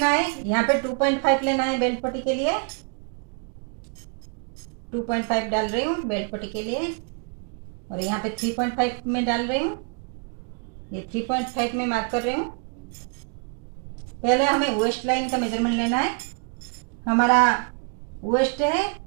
है, यहाँ पे 2.5 लेना है बेल्ट पट्टी के लिए। 2.5 डाल रही हूँ बेल्ट पट्टी के लिए और यहाँ पे 3.5 में डाल रही हूँ। ये 3.5 में मार्क कर रही हूँ। पहले हमें वेस्ट लाइन का मेजरमेंट लेना है। हमारा वेस्ट है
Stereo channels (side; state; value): left; quieter; 35.7 dB